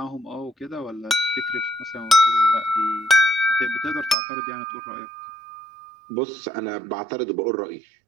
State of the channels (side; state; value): left; drops out; at 4.2 s